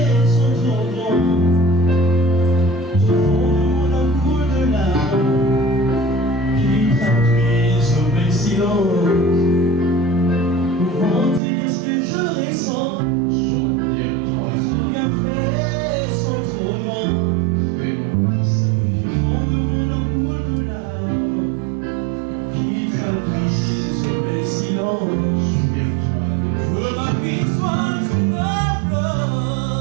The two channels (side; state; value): left; drops out; at 11.4 s